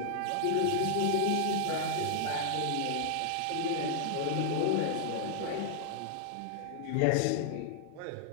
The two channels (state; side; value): different; both; correlation -0.01